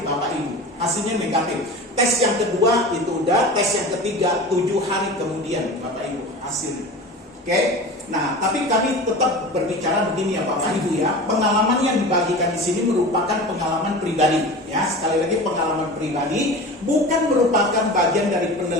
Ibu, hasilnya negatif. Tes yang kedua itu udah, tes yang ketiga 7 hari kemudian Bapak Ibu hasilnya. Oke. Nah, tapi kami tetap berbicara begini ya Bapak Ibu ya. Pengalaman yang dibagikan di sini merupakan pengalaman pribadi ya. Sekali lagi pengalaman pribadi, bukan merupakan bagian dari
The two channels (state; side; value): normal; both; correlation 0.33